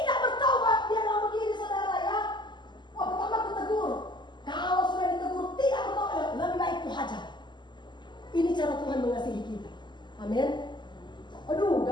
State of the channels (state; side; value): late; right; 0.21 ms